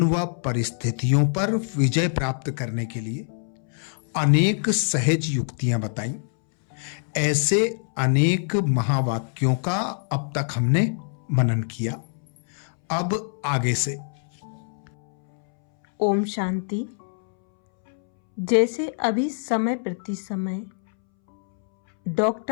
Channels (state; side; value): silent; right; 62 dB below the other